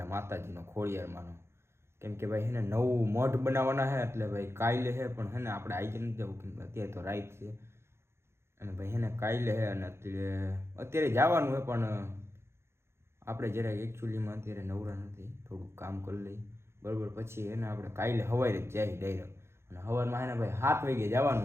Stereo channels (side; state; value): left; late; 0.12 ms